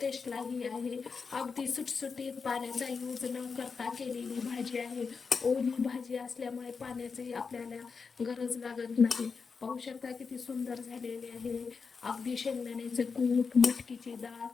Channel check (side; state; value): right; quieter; 5.2 dB